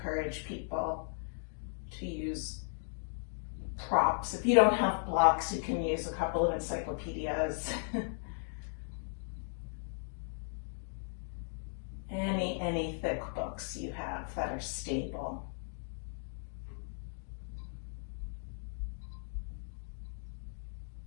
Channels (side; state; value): right; silent; digital silence